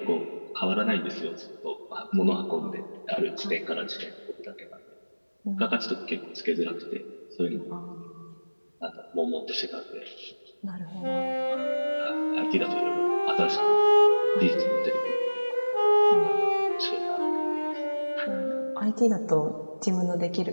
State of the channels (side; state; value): both; inverted; correlation -1.00